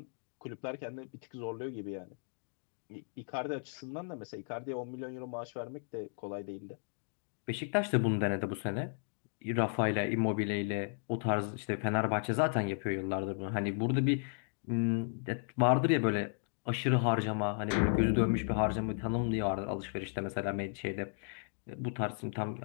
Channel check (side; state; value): right; silent; digital silence